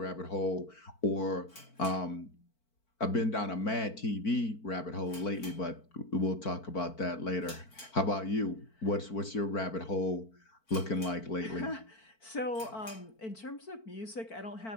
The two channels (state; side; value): late; right; 4.5 ms